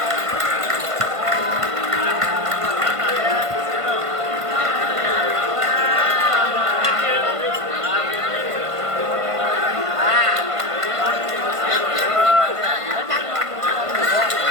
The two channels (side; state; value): left; late; 1.5 ms